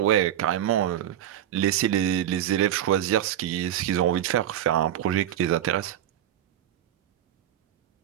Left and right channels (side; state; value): left; quieter; 11.3 dB